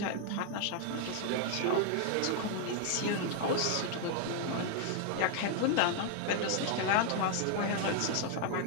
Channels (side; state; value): both; different; correlation 0.00